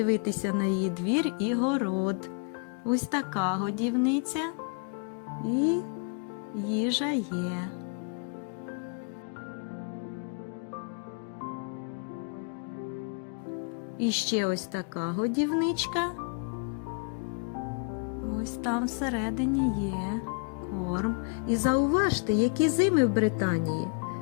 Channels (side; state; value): right; quieter; 37.9 dB